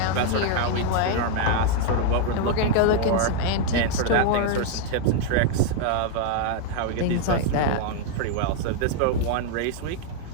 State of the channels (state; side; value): different; both; correlation 0.00